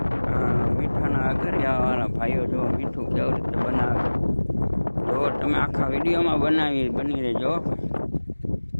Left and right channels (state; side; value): inverted; both; correlation -1.00